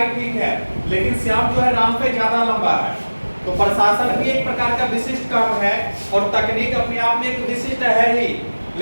ठीक है, लेकिन श्याम जो है राम से ज्यादा लंबा है। तो प्रशासन भी एक प्रकार का विशिष्ट काम है और तकनीक अपने आप में एक विशिष्ट है ही,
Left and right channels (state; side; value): inverted; both; correlation -1.00